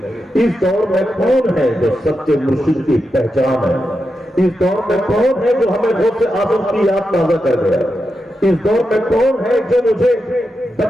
اس دور میں کون ہے جو سچے مرشد کی پہچان ہے؟ اس دور میں کون ہے جو ہمیں غوث اعظم کی یاد تازہ کر گیا؟ اس دور میں کون ہے جو مجھے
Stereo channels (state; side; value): normal; both; correlation 0.88